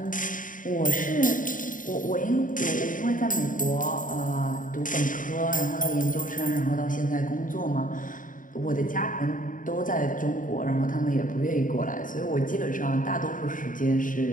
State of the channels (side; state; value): right; late; 0.39 ms